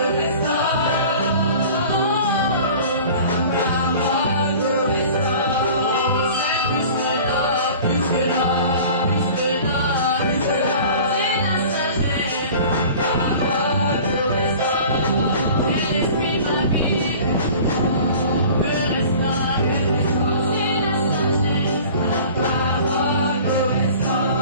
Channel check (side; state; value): both; inverted; correlation -0.43